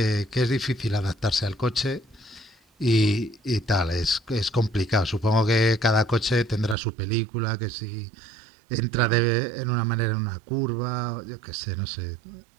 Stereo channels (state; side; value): drops out; left; at 6.8 s